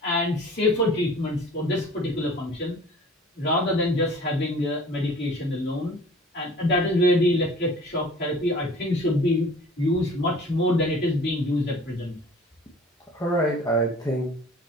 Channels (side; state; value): both; normal; correlation 0.46